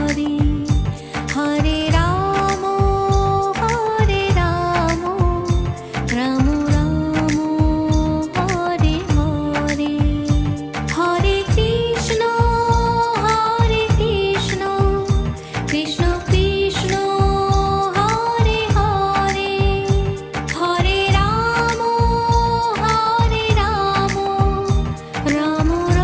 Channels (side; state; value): both; identical; correlation 1.00